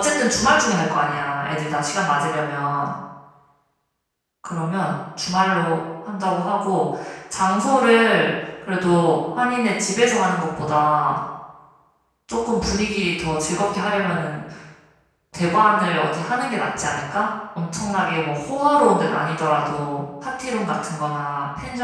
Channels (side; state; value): both; identical; correlation 1.00